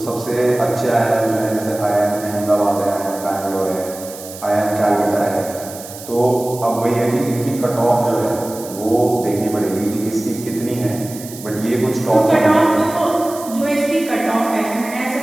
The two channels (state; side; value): noise; right; hiss, 14 dB below the sound